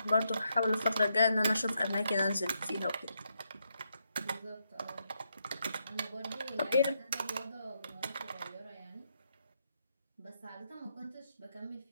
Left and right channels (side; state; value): both; inverted; correlation -0.80